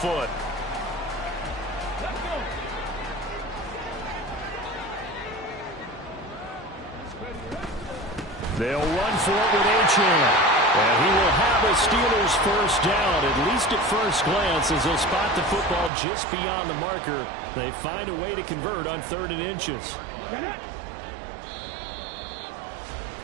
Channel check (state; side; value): drops out; left; at 15.9 s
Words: They'll run for it with Achane. And he will have a Steelers first down, at least at first glance, as they'll spot the football just beyond the marker. They find a way to convert on 3rd and inches.